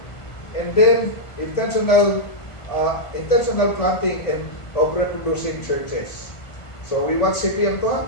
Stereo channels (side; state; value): right; late; 1.5 ms